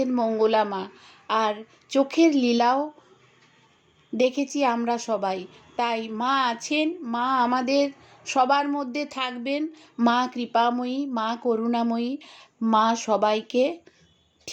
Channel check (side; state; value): both; identical; correlation 1.00